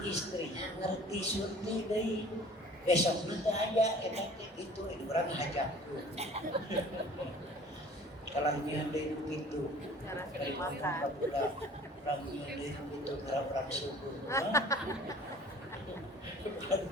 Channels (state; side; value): normal; both; correlation 0.48